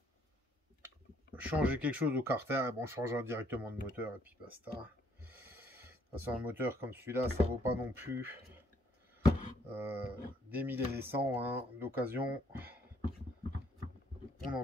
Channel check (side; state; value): both; normal; correlation 0.66